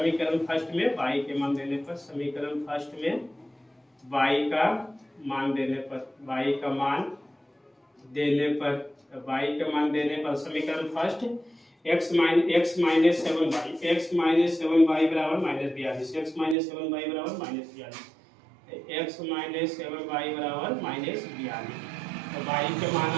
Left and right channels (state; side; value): drops out; left; at 16.6 s